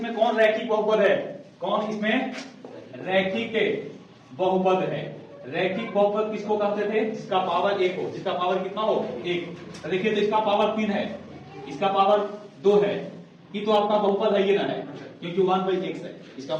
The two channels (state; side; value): identical; both; correlation 1.00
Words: कौन रैखिक बहुपद है, कौन इसमें रैखिक बहुपद है। रैखिक बहुपद किसको कहते थे, जिसका पावर 1 हो, जिसका पावर कितना हो 1। देखिए तो इसका पावर 3 है, इसका पावर 2 है, ये तो आपका बहुपद है, ये ना है क्योंकि 1/x है, इसका